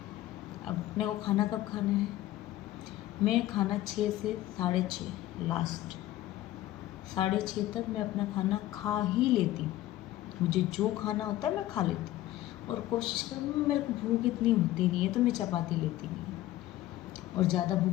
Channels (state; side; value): quieter; right; 15.1 dB